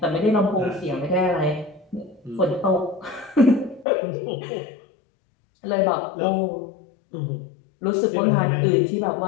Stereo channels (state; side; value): drops out; right; at 3.9 s